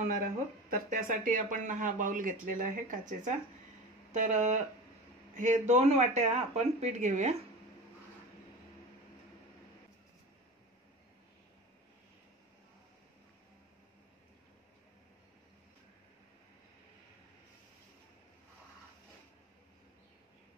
आहोत. तर त्यासाठी आपण हा बाउल घेतलेला आहे काचेचा. तर हे 2 वाट्या आपण पीठ घेऊया.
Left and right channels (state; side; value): normal; both; correlation 0.32